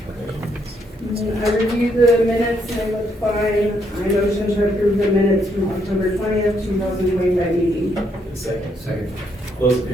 I reviewed the minutes and they look fine. I motion to approve the minutes from October 20th, 2025 meeting. Second. Second. Close the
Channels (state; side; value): normal; both; correlation 0.74